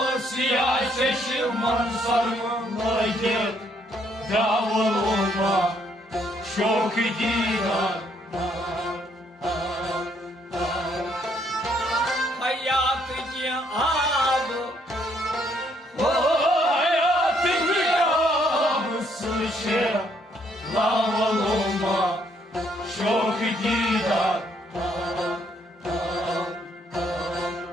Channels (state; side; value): normal; both; correlation 0.70